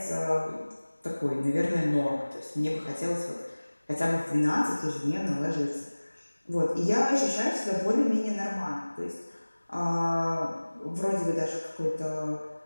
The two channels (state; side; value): inverted; both; correlation -1.00